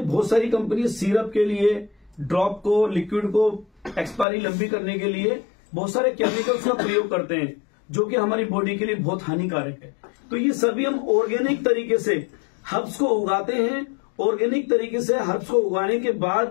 सारी कंपनी सिरप के लिए, ड्रॉप को, लिक्विड को एक्सपायरी लंबी करने के लिए बहुत सारे केमिकल्स का प्रयोग करते हैं, जो कि हमारी बॉडी के लिए बहुत हानिकारक है। तो ये सभी हम ऑर्गेनिक तरीके से हर्ब्स को उगाते हैं, ऑर्गेनिक तरीके से हर्ब्स को उगाने के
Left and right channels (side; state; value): right; drops out; at 4.2 s